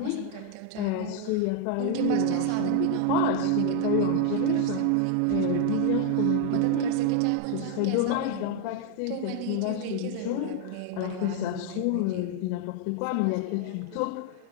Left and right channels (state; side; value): different; both; correlation 0.00